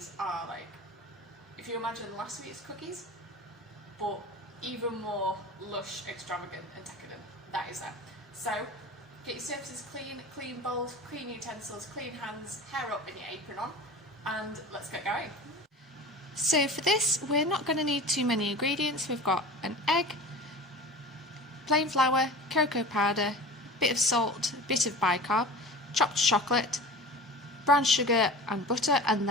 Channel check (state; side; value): normal; both; correlation 0.36